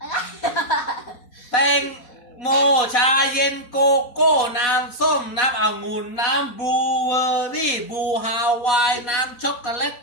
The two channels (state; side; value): late; right; 4.1 ms